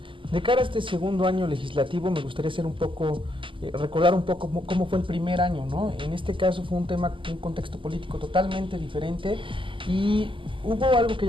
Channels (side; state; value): left; late; 0.25 ms